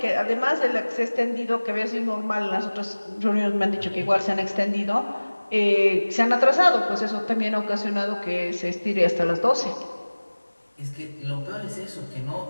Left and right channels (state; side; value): inverted; both; correlation -1.00